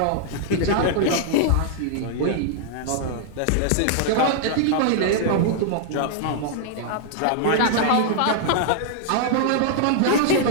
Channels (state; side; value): different; both; correlation 0.00